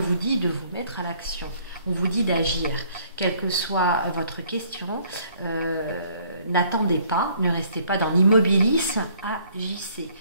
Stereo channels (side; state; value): both; inverted; correlation -0.62